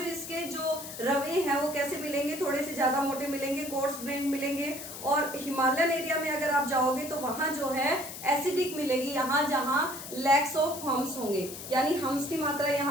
इसके जो रवे हैं वो कैसे मिलेंगे? थोड़े से ज्यादा मोटे मिलेंगे, कोर्स ग्रेन मिलेंगे। और हिमालयन एरिया में अगर आप जाओगे तो वहां जो है एसिडिक मिलेगी, यहाँ जहां लैक्स ऑफ हम्स होंगे, यानी हम्स की मात्रा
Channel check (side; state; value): left; noise; hiss, 10 dB below the sound